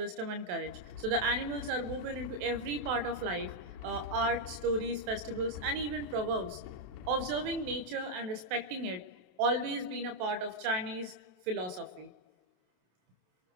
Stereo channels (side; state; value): left; late; 28 ms